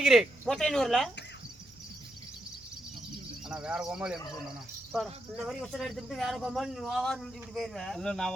மொட்டையனூர்ல. ஆனா வேற கோமாளி என்ன சொன்னா இந்த மாதிரி உசரை எடுத்துட்டு வேற கோமாளி இப்படி போயிருவேன். இல்ல நான்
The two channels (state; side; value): noise; right; hum, 28 dB below the sound